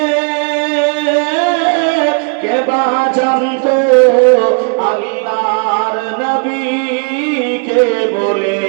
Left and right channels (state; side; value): quieter; left; 38.8 dB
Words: কে বা জানতো আল্লাহর নবীকে বলে?